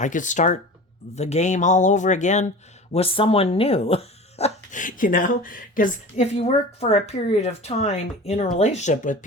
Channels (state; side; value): normal; both; correlation 0.36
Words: could start the game all over again with someone new. You know, because if you work for a period of time in a relationship with